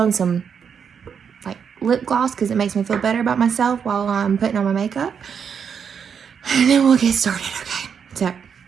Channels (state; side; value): quieter; left; 7.1 dB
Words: some like lip gloss because it makes me feel better about myself while I'm putting on my makeup. And then we'll get started, okay? So,